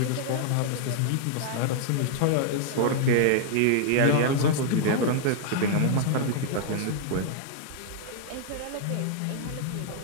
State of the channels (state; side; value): different; both; correlation -0.01